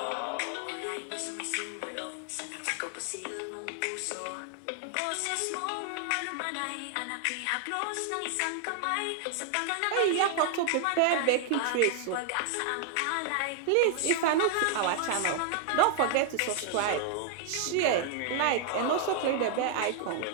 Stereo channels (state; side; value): different; both; correlation 0.00